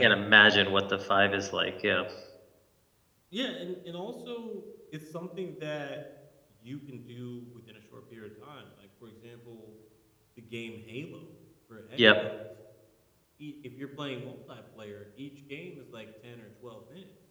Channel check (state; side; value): identical; both; correlation 1.00